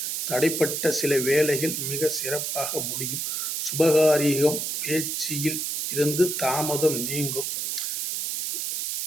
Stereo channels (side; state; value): right; noise; hiss, 2 dB below the sound